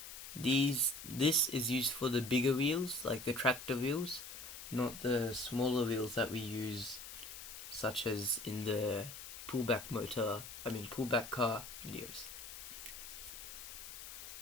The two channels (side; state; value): left; noise; hiss, 11 dB below the sound